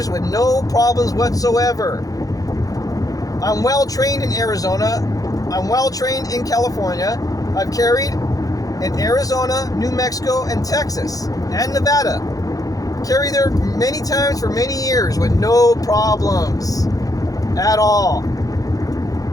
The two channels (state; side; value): late; right; 0.17 ms